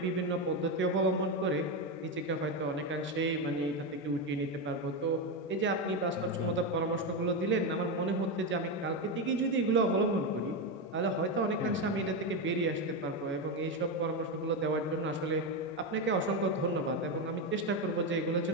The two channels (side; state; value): both; normal; correlation 0.11